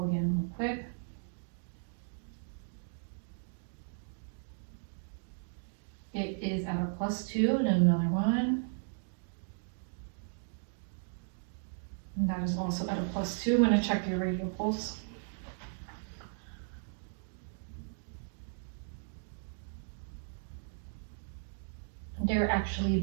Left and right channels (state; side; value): silent; left; digital silence